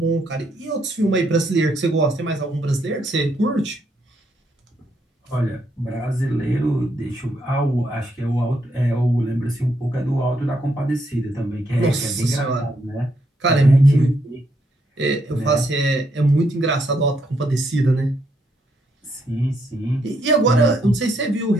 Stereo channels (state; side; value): normal; both; correlation 0.75